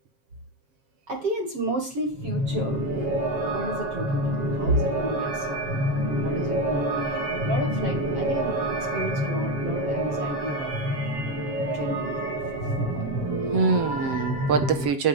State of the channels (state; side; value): late; left; 7.4 ms